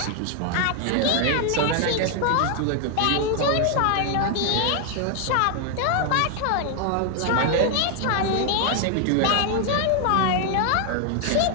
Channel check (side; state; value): both; different; correlation 0.00